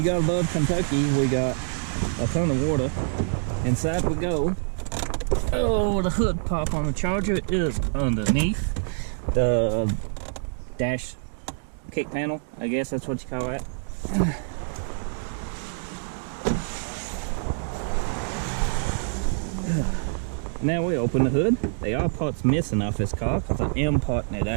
gotta love Kentucky. We got a ton of water. Inside we go. Oh, the hood pop on the Charger is underneath the dash kick panel, I guess that's what you call that. Now we open the hood. There are parts missing off this car because I am parting it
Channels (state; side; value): silent; left; digital silence